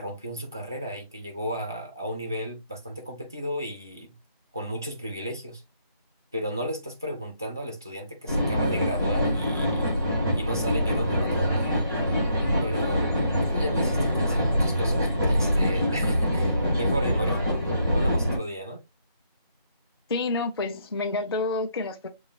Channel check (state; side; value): inverted; both; correlation -0.73